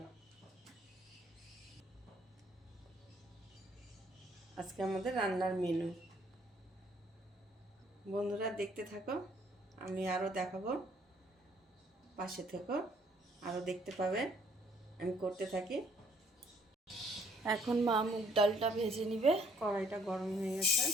রান্নার মেনু। বন্ধুরা দেখতে থাকো, আমি আরও দেখাবো, পাশে থেকো, আরও দেখতে পাবে আমি করতে থাকি। এখন মা মুগ ডালটা ভেজে নিবে। কড়াইটা গরম হয়ে গেছে,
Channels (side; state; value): both; normal; correlation 0.64